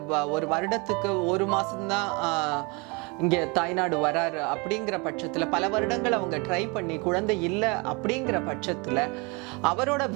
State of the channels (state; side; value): quieter; left; 29.1 dB